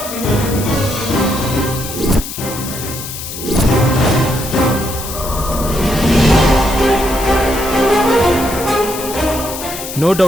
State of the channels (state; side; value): noise; left; hiss, 9 dB below the sound